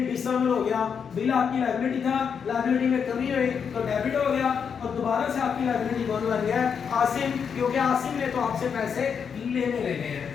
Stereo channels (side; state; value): right; quieter; 6.8 dB